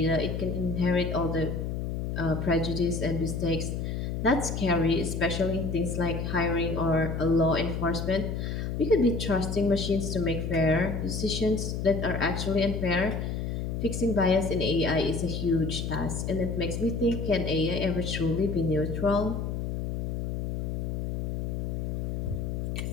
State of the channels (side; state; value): left; noise; hum, 2 dB below the sound